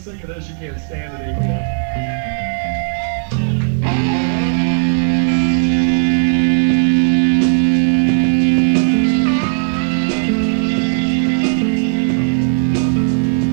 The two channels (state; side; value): silent; left; 69 dB below the other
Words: of this you can't stand it anymore.